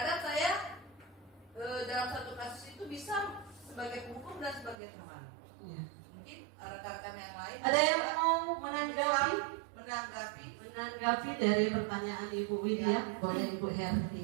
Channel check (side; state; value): left; drops out; at 4.8 s